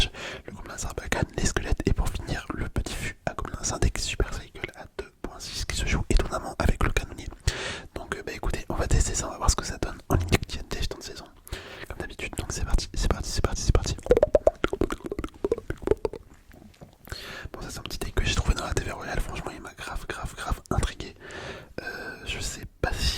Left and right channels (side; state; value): both; identical; correlation 1.00